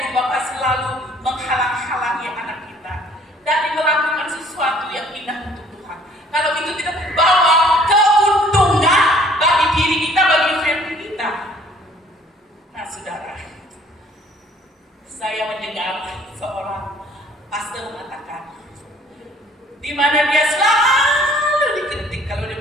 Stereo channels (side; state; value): both; normal; correlation 0.57